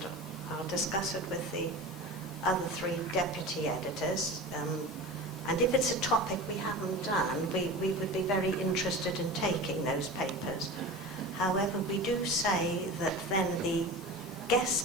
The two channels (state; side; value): normal; both; correlation 0.32